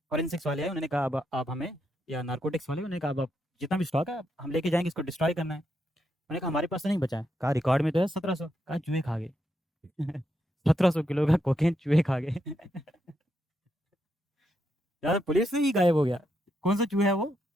फॉरेंसिक्स वाले आए, उन्होंने कहा अब आप हमें, या नारकोटिक्स वाले, उन्होंने कहा अब आप जितना भी स्टॉक है हम लेके जाएंगे, इसको डिस्ट्रॉय करना है। उन्होंने कहा हमारे पास तो नहीं बचा है, कहा रिकॉर्ड में तो है 1700, कहा चूहे खा गए। 1700 किलो का कोकेन चूहे खा गए। यार पुलिस से ही गायब हो गया, कौन सा चूहा है वो।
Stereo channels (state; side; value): normal; both; correlation 0.81